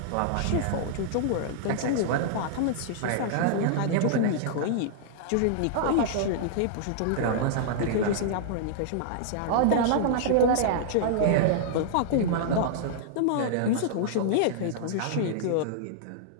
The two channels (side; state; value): both; different; correlation -0.02